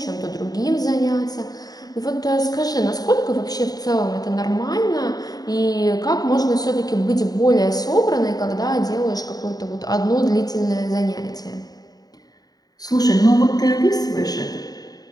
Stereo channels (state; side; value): late; right; 0.18 ms